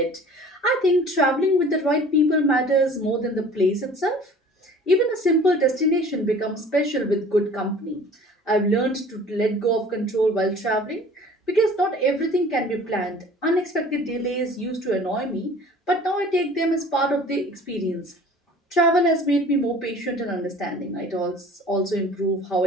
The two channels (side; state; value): both; normal; correlation 0.47